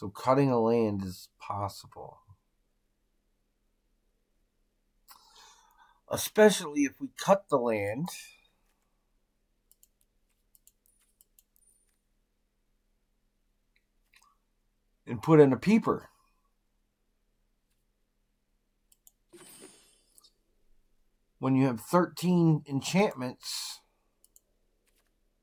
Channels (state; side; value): identical; both; correlation 1.00